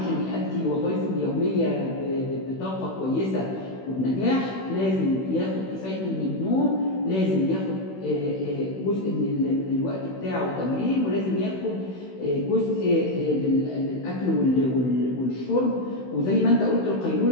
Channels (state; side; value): late; right; 16 ms